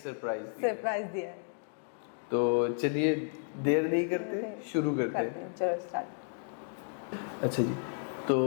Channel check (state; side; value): silent; right; 56 dB below the other